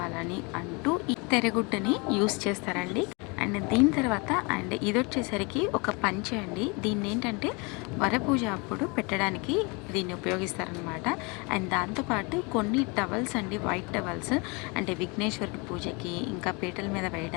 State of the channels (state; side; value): quieter; right; 29.5 dB